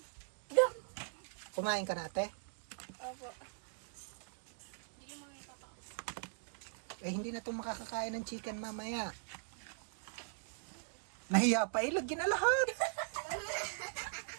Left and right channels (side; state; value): left; silent; digital silence